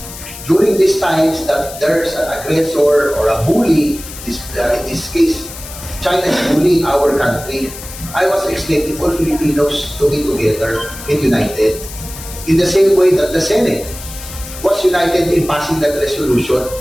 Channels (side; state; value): left; noise; hiss, 13 dB below the sound